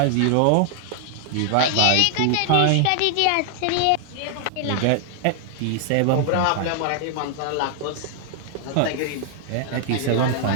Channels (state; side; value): different; both; correlation 0.00